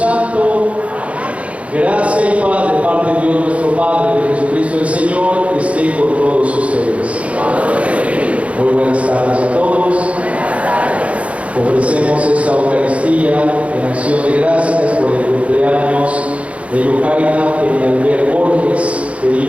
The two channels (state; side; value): late; left; 0.064 ms